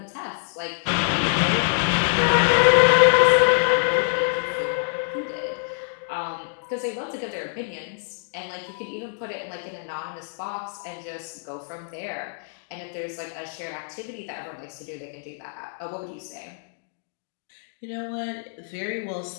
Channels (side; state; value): right; silent; digital silence